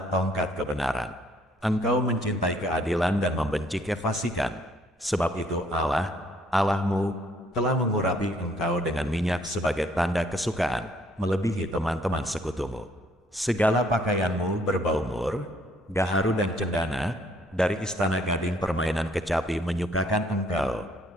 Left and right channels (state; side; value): normal; both; correlation 0.65